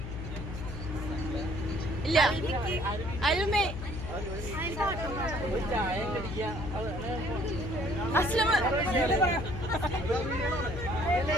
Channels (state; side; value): noise; left; hum, 7 dB below the sound